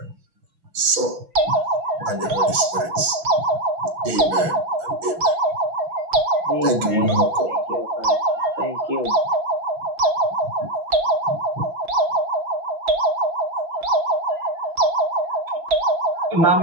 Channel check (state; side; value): late; left; 6.0 ms